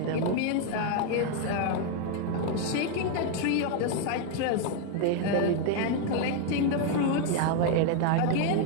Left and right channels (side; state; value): both; different; correlation 0.01